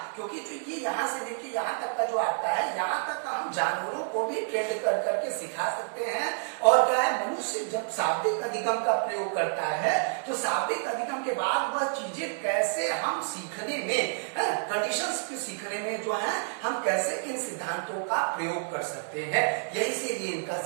क्योंकि जो ये यहाँ से लेके यहाँ तक का जो आता है, यहाँ तक का हम जानवरों को भी ट्रेंड कर करके सिखा सकते हैं। और क्या है, मनुष्य जब शाब्दिक अधिगम का प्रयोग करता है तो शाब्दिक अधिगम के बाद वह चीजें कैसे हम सीखने में, कंडीशंस को सीखने में जो है हम कैसे इन सिद्धांतों का प्रयोग कर सकते हैं, यही से ये इनका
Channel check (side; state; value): left; silent; digital silence